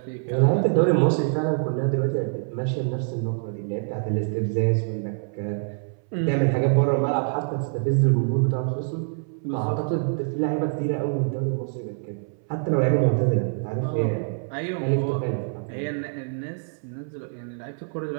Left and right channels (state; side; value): silent; left; 62 dB below the other